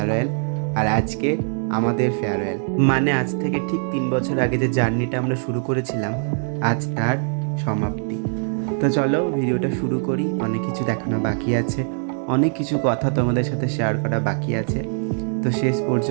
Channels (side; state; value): left; silent; 56 dB below the other